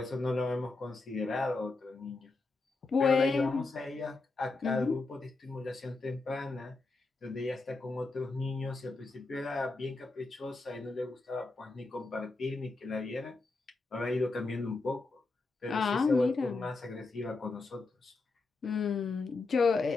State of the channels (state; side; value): quieter; right; 3.6 dB